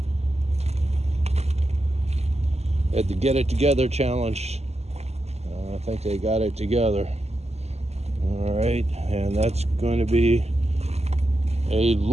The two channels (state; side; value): late; left; 0.31 ms